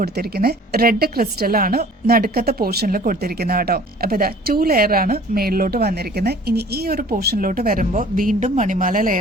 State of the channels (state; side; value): normal; both; correlation 0.49